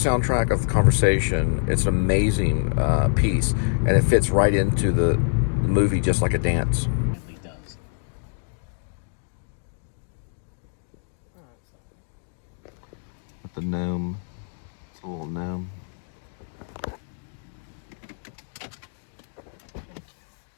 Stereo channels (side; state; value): right; silent; digital silence